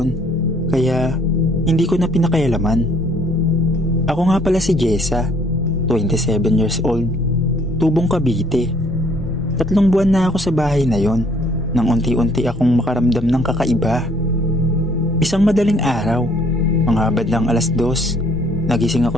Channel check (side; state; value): both; normal; correlation 0.62